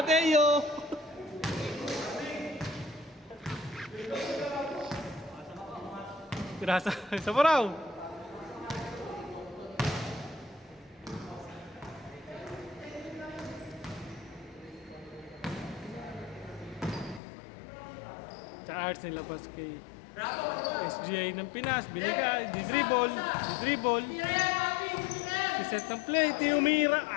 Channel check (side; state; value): right; drops out; at 17.2 s